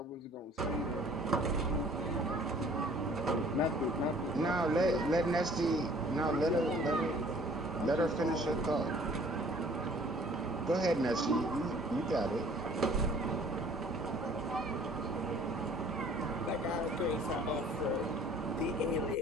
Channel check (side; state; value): both; normal; correlation 0.54